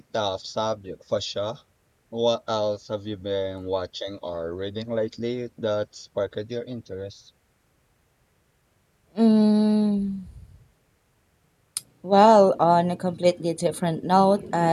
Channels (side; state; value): both; identical; correlation 1.00